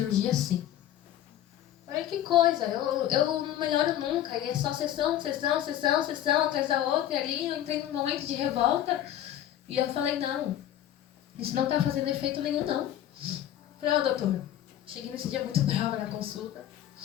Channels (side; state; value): right; quieter; 11.8 dB